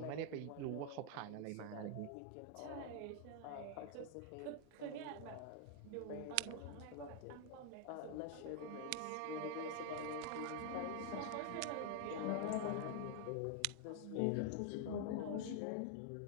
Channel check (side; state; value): both; different; correlation 0.00